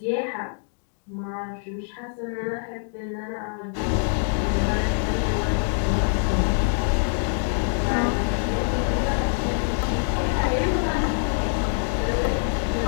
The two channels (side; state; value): right; silent; 60 dB below the other